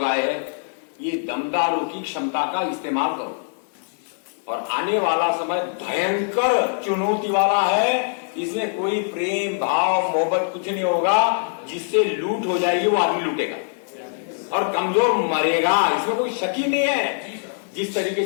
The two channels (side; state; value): right; silent; digital silence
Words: आए हैं, ये दमदारों की क्षमता का इस्तेमाल करो। और आने वाला समय भयंकर चुनौती वाला है, इसमें कोई प्रेम भाव मोहब्बत कुछ नहीं होगा, जिससे लूट हो जाएगी वो आदमी लूटेगा और कमजोर मरेगा, इसमें कोई शक ही नहीं है। जिस तरीके